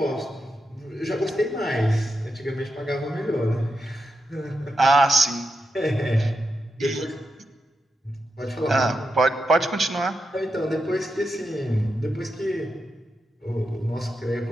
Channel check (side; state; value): both; normal; correlation 0.87